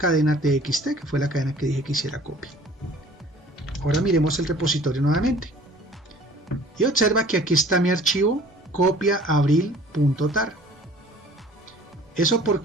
txt, que fue la cadena que dije que hiciera copia. Ahora miremos el repositorio nuevamente y observa que aquí está mi archivo copia abril.tar. ¿Eso por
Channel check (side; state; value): both; normal; correlation 0.51